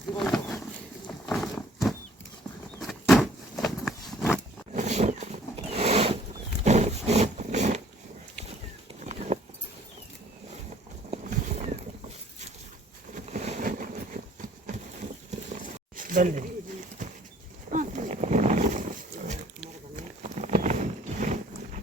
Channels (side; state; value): both; normal; correlation 0.57